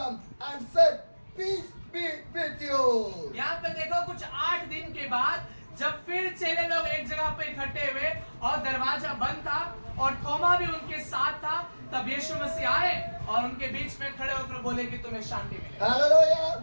and said, "Peace be with you." यहाँ पे देखो कुछ 8 दिन के बाद जब फिर चेले लोग एक जगह पे इकट्ठे हुए और दरवाजा बंद था और थोमा भी उनके साथ था, तब यीशु मसीह आए और उनके बीच में खड़े होकर बोले कि तुम्हें शांति मिले। Hallelujah.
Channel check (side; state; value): both; inverted; correlation -1.00